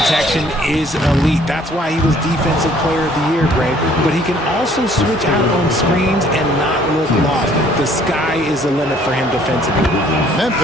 is elite. That's why he was Defensive Player of the Year, Greg. But he can also switch out on screens and not look lost. The sky is the limit for him defensively.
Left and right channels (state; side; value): normal; both; correlation 0.59